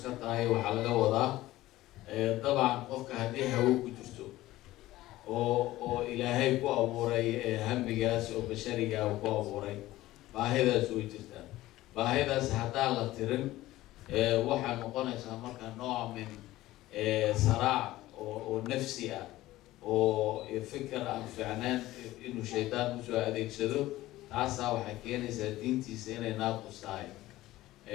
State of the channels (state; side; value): quieter; right; 16.5 dB